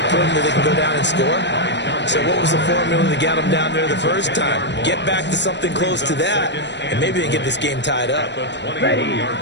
proven that they can go down and score? So what was the formula to get them down there the first time? Get back to something close to that, and maybe they get this game tied up. Ready.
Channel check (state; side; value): late; right; 0.51 ms